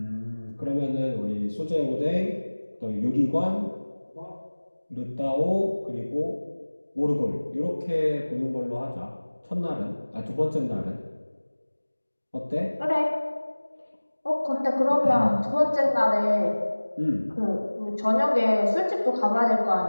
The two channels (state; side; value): inverted; both; correlation -1.00